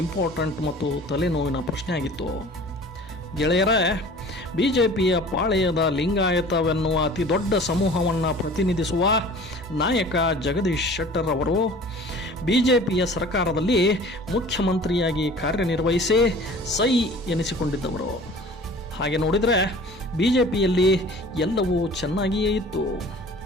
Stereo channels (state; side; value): normal; both; correlation 0.45